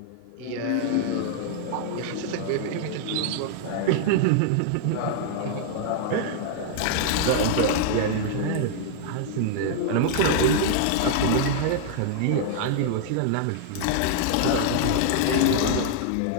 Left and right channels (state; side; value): different; both; correlation -0.01